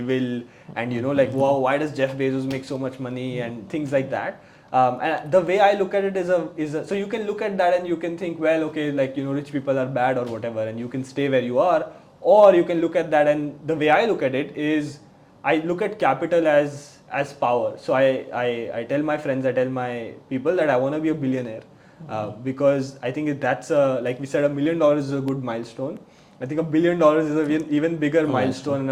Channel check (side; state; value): both; identical; correlation 1.00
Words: and like, wow, why does Jeff Bezos make so much money and things like that. And the way I look at it is so you can look at that and you can think, well, okay, like rich people are bad or whatever, and you can stay where you are, or you can look at that, and the way I look at it is I look at capital as power. So I tell my friends, I tell my people that I want to be a billionaire, because I think that's like we said, $1 million is a good milestone. I think $1 billion is an even bigger milestone and